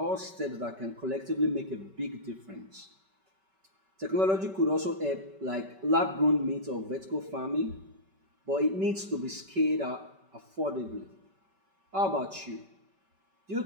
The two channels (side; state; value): left; late; 5.2 ms